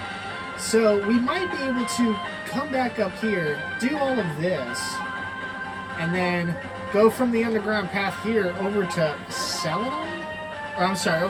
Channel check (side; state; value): both; identical; correlation 1.00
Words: So we might be able to come back up here, do all of this, and then go from the underground path here over to Celadon? Or I'm sorry,